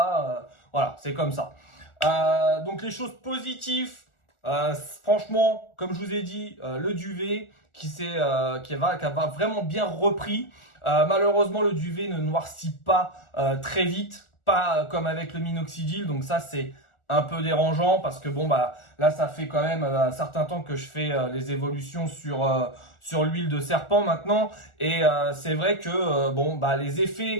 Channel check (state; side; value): late; right; 1.4 ms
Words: Voilà, c'est comme ça. Donc, les choses positives, franchement, comme je vous ai dit, le duvet qui va vraiment bien repris. Malheureusement, le duvet ne noircit pas très vite, pas comme avec le minoxidil. Donc ça, c'est un peu dérangeant parce que bon là, ça fait quand même un certain temps que je fais les évolutions sur l'huile de serpent maintenant. Et c'est vrai que les